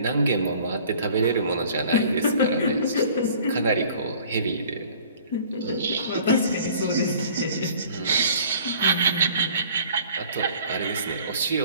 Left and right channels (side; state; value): both; inverted; correlation -0.51